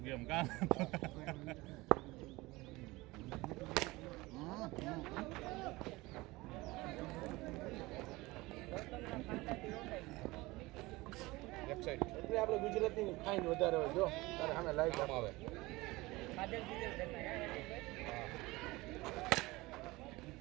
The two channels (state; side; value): quieter; left; 21.1 dB